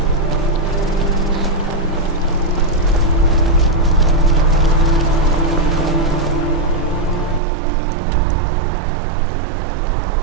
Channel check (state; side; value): drops out; left; at 7.4 s